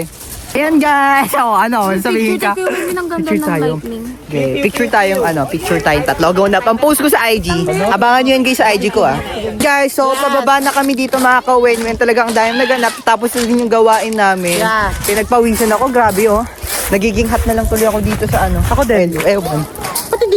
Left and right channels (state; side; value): identical; both; correlation 1.00